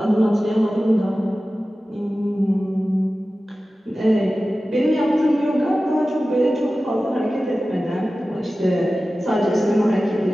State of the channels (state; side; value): normal; both; correlation 0.95